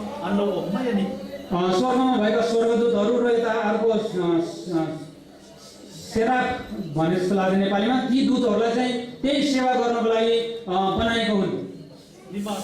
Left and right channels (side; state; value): both; identical; correlation 1.00